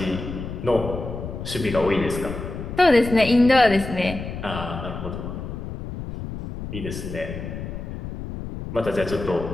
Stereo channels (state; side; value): noise; left; rumble, 8 dB below the sound